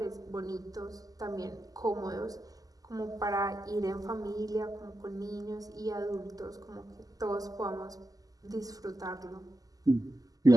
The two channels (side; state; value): left; late; 0.17 ms